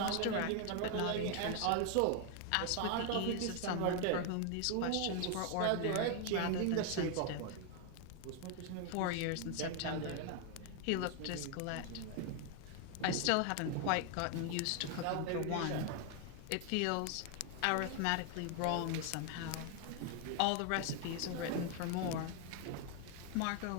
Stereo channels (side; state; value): both; different; correlation 0.00